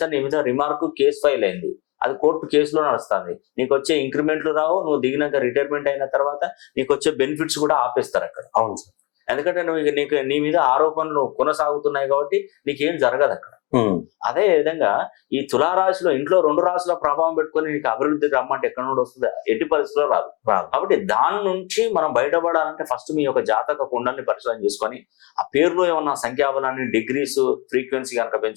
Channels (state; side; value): quieter; right; 27.3 dB